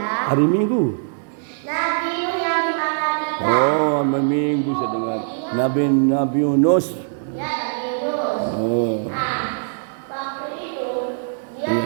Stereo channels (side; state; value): left; silent; digital silence